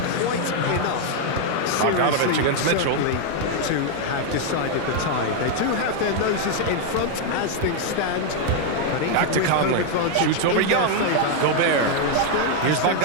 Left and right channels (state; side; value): different; both; correlation 0.00